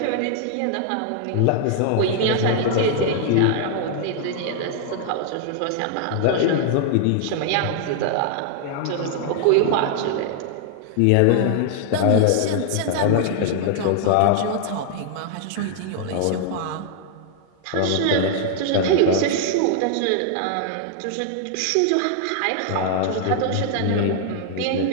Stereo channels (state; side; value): different; both; correlation 0.00